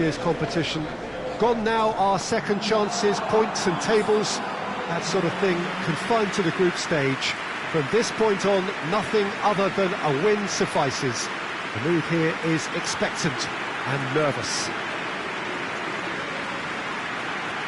competition. Gone now are second chances, points and tables, that sort of thing confined to the group stage. From this point on, nothing other than a win suffices. The mood here is expectant and nervous.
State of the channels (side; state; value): both; identical; correlation 1.00